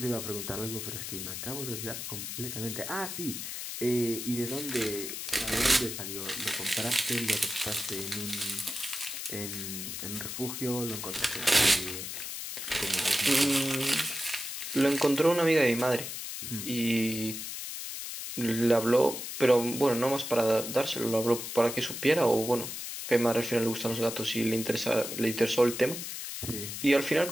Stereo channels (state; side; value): noise; left; hiss, 6 dB below the sound